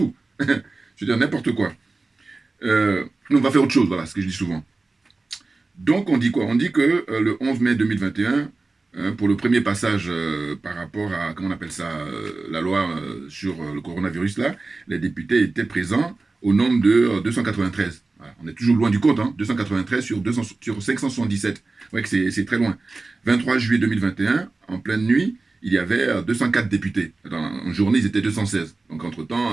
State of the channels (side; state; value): left; quieter; 3.5 dB